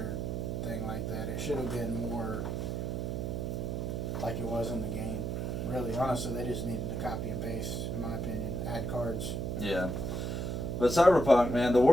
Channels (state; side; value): noise; right; hum, 2 dB below the sound